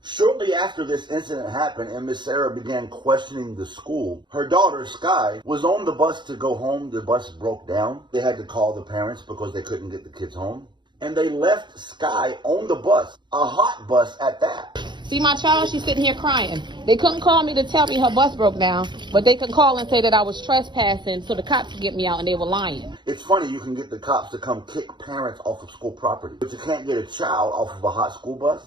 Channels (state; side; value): late; left; 0.22 ms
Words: Shortly after this incident happened and Miss Sarah began questioning the school, her daughter, Sky, was on the bus to go home. The bus broke down. They had to call the parents because they couldn't get the kids home. And they left Sky on the bus, a hot bus at that. See my child? She's sitting here crying. They couldn't call me to tell me her bus broke down, but they could call and say that I was trespassing so the cops could get me out, and they were lying. It's funny, you can get the cops to come kick parents off of school property, but you can't get a child off of a hot school